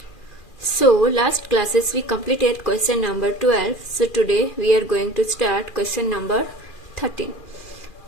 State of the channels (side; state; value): right; late; 2.4 ms